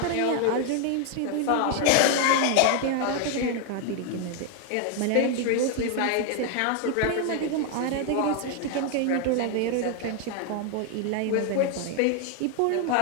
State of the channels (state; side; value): different; both; correlation 0.00